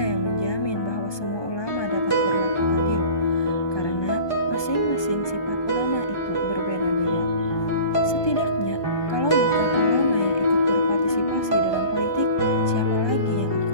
yang menjamin bahwa semua ulama dapat berlaku adil, karena masing-masing sifat ulama itu berbeda-beda. Setidaknya, kalau bukan ulama yang ikut berpartisipasi dalam politik, siapa lagi yang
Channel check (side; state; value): right; late; 1.2 ms